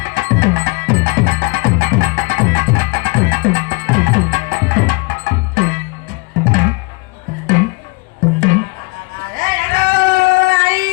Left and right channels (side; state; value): right; quieter; 28.5 dB